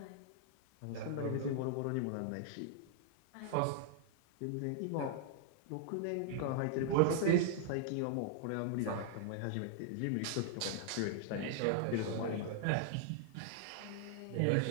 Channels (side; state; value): both; different; correlation -0.01